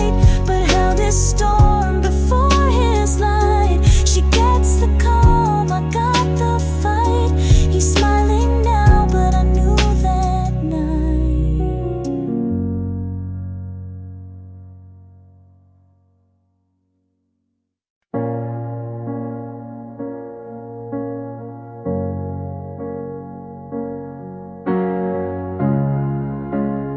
but held his storm before his light. She gets the calm, I got the fight. He's smiling now, but I knew that night.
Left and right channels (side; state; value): both; identical; correlation 1.00